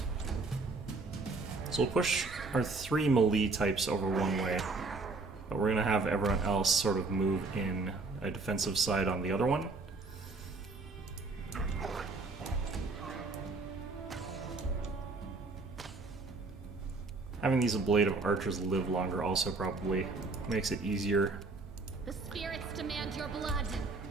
So we'll push our 3 melee types over one way, but we're going to have everyone else sort of move in a defensive side on the other one. Having these Blade of Archers live longer also probably makes it easier. The spirits demand your blood.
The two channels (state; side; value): quieter; left; 3.7 dB